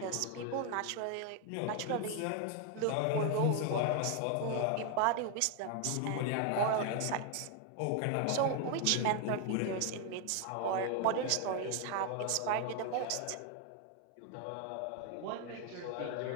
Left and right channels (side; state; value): both; different; correlation 0.01